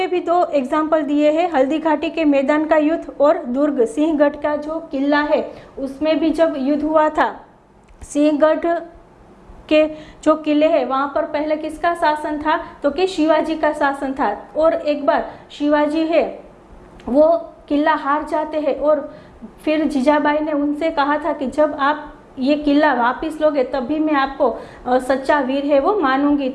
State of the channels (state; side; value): identical; both; correlation 1.00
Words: भी 2 एग्जाम्पल दिए हैं, हल्दी घाटी के मैदान का युद्ध और दुर्ग सिंहगढ़ का जो किला है उसमें भी जब युद्ध हुआ था। सिंहगढ़ के जो किले हैं वहाँ पर पहले किसका शासन था, तो कि शिवाजी का शासन था। और एक बार शिवाजी है वो किला हार जाते हैं और फिर जीजाबाई ने उनसे कहा था कि जब आप ये किला वापस लोगे तभी मैं आपको सच्चा वीर है वो मानूंगी।